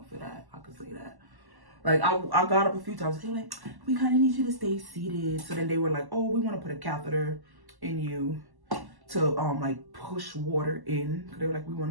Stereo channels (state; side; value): late; left; 1.1 ms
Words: for that. I could say that. Like, I got up a few times. They were like, we kind of need you to stay seated. So then they were like, oh, we want to put a catheter in you to like push water in. They were like, we